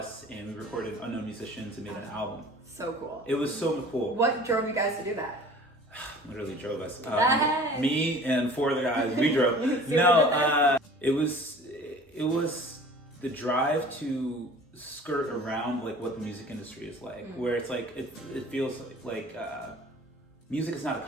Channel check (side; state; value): both; normal; correlation 0.46